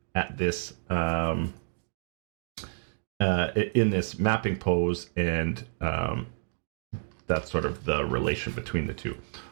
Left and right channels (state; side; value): silent; left; digital silence